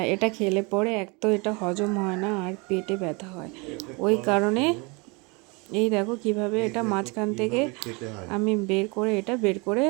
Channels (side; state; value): left; quieter; 29.0 dB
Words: এটা খেলে পরে এক তো এটা হজম হয় না আর পেটে ব্যথা হয়। ওই কারণে এই দেখো কিভাবে এটা মাঝখান থেকে আমি বের করে